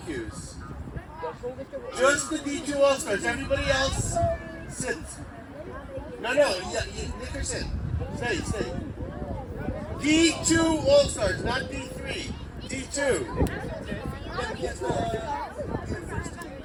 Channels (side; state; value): both; identical; correlation 1.00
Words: Just the D2 All-Stars. Everybody else, sit. No, Nicker, sit. Stay. D2 All-Stars, not D3. D2.